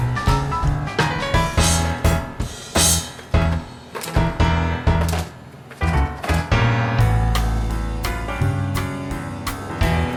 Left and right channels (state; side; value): identical; both; correlation 1.00